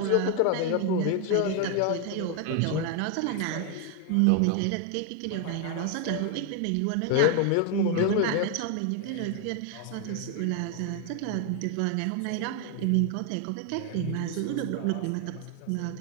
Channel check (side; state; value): both; different; correlation 0.00